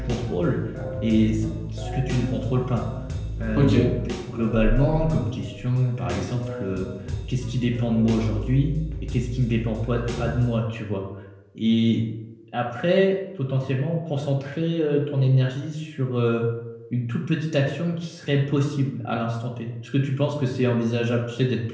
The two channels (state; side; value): identical; both; correlation 1.00